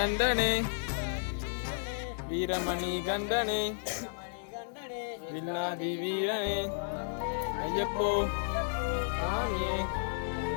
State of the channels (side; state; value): right; silent; 56 dB below the other